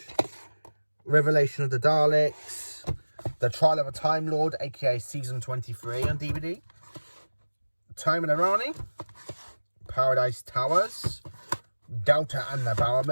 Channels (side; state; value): both; inverted; correlation -1.00